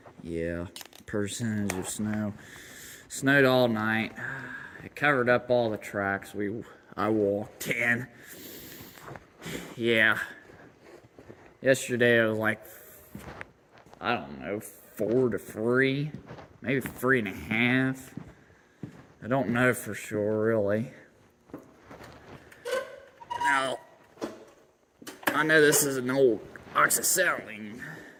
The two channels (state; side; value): identical; both; correlation 1.00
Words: percentage of snow. Snowed all night. It covered up all the tracks I walked in. Yeah. Yesterday it was like, I don't know, 4 to 3, maybe 3.5. I don't know for sure, really. Now, I know this is an old oxyacetylene